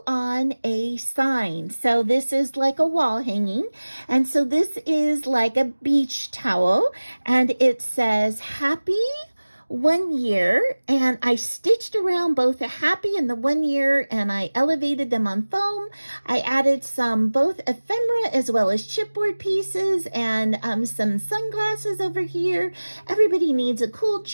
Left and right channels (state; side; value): inverted; both; correlation -1.00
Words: on a sign. So this is like a wall hanging. And so this is like a beach towel, and it says happy 1 year, and I stitched around both the happy and the 1 year, and I elevated them on foam. I added some both ephemera as well as chipboard pieces, and some sunglasses over here. Everybody needs a cool